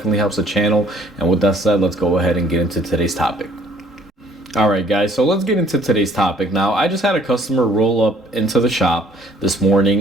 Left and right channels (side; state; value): both; normal; correlation 0.59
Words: helps the channel. And with that said, let's go ahead and get into today's topic. Alright guys, so let's get into today's topic. Now, I just had a customer roll up into the shop this